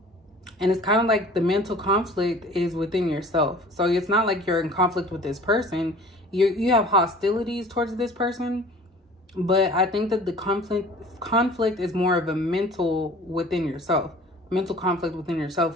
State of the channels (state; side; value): normal; both; correlation 0.46